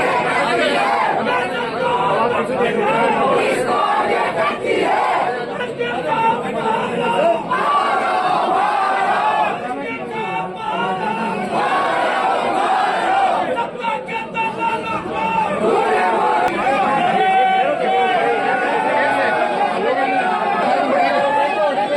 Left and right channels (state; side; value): identical; both; correlation 1.00